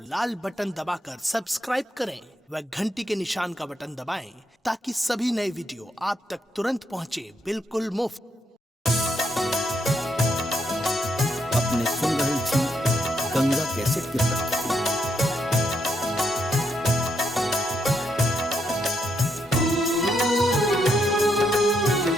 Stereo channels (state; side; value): normal; both; correlation 0.78